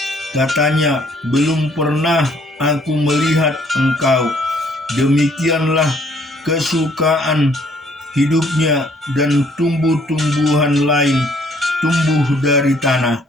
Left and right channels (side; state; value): both; normal; correlation 0.63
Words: Katanya, belum pernah aku melihat engkau. Demikianlah kesukaan hidupnya, dan tumbuh-tumbuhan lain tumbuh dari tanah.